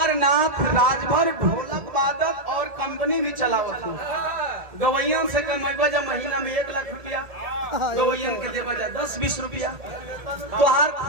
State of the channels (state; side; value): late; left; 1.7 ms